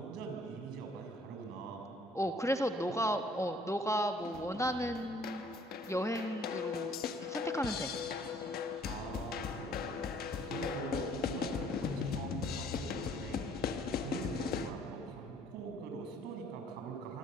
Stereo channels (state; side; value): normal; both; correlation 0.59